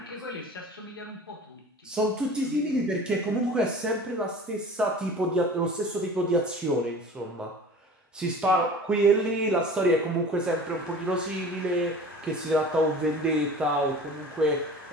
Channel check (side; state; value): both; normal; correlation 0.41